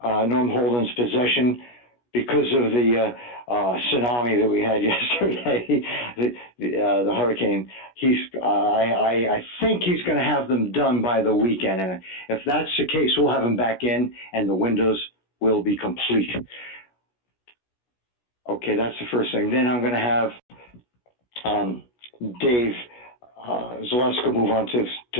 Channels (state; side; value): late; right; 16 ms